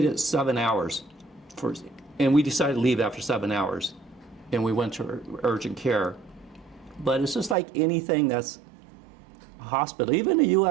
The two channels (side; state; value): left; drops out; at 7.6 s